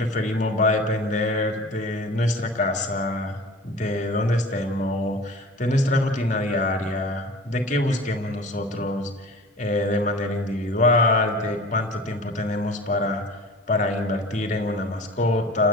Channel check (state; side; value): normal; both; correlation 0.40